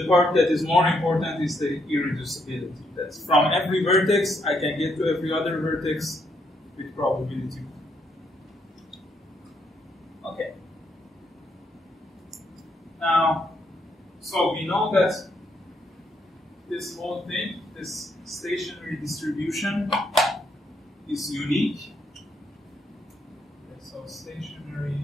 part that is more important is the irreducibility. That's from every vertex, I can get to every other vertex with probability 1. Okay. Now, so we know that this whole thing, this stationary distribution, is unique. Okay, so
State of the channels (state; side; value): normal; both; correlation 0.75